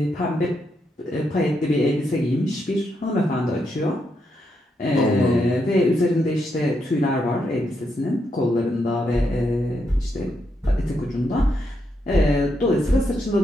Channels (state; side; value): normal; both; correlation 0.80